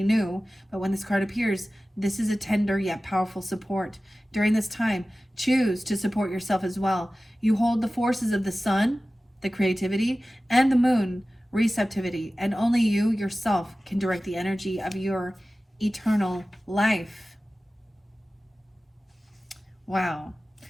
new, but when this card appears, this is a tender yet powerful support. During this time, choose to support yourself as well. You hold the forces of the sun, the creativity, and the moon, receptivity, and only you yourself can direct the energy of your eternal life. Wow.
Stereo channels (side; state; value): both; normal; correlation 0.96